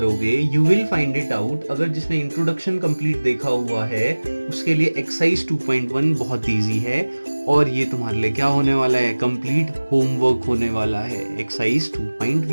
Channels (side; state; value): both; inverted; correlation -1.00